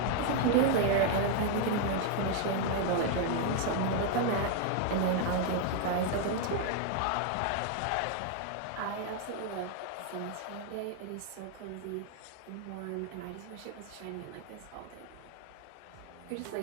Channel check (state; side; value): different; both; correlation 0.01